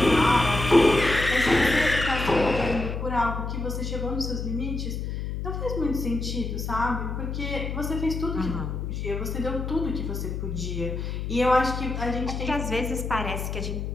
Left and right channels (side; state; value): left; noise; hum, 4 dB below the sound